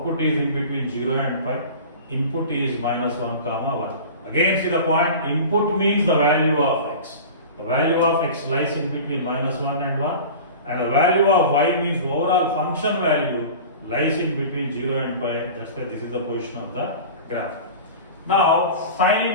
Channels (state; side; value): inverted; both; correlation -0.36